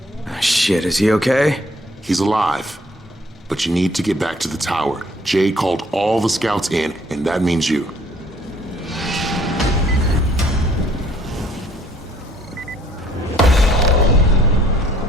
Shit, is he okay? He's alive, but you need to get back to the tower. Jade called all the scouts in, and that means you.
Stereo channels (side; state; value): both; normal; correlation 0.60